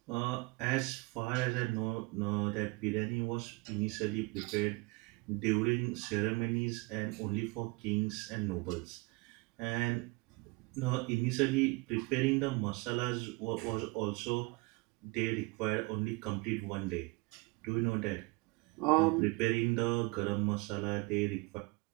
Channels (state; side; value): quieter; left; 26.1 dB